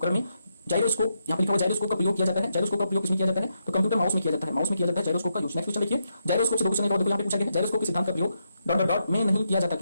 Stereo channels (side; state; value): both; inverted; correlation -0.82